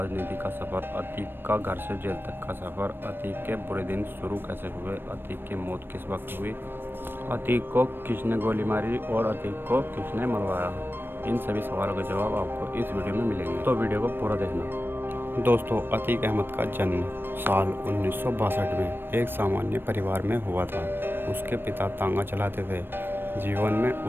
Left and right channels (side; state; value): left; late; 0.098 ms